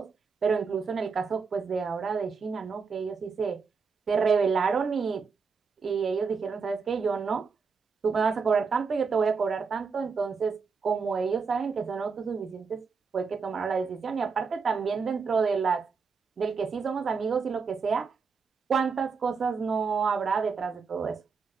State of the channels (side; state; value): left; quieter; 5.3 dB